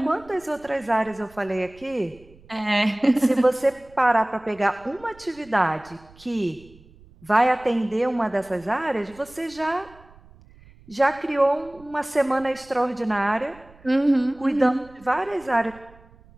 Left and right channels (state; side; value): noise; right; rumble, 25 dB below the sound